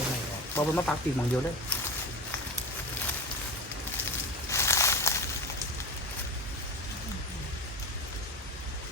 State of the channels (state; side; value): normal; both; correlation 0.27